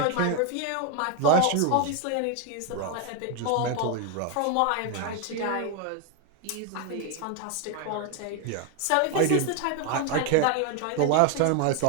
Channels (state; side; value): different; both; correlation 0.01